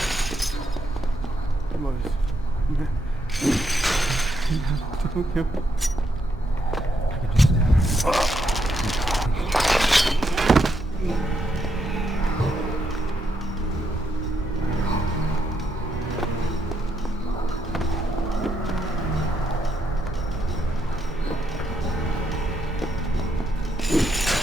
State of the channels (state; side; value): normal; both; correlation 0.79